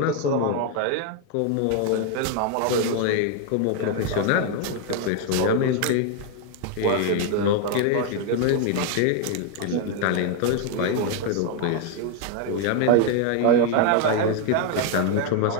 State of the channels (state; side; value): different; both; correlation 0.01